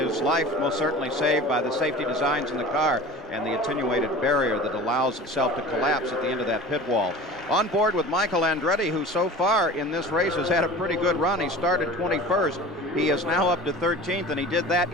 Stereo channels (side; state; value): both; normal; correlation 0.39